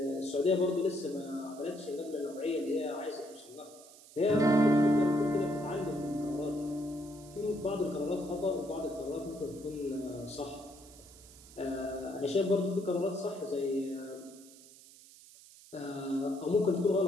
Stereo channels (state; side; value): noise; right; hiss, 21 dB below the sound